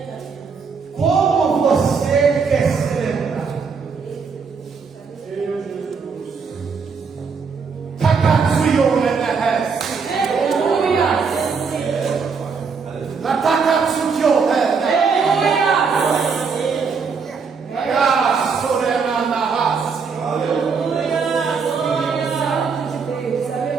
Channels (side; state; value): left; quieter; 5.4 dB